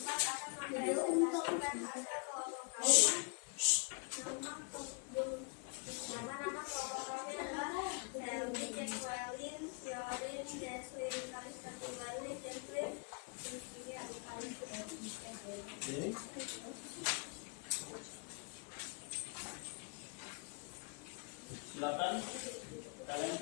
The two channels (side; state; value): right; quieter; 36.2 dB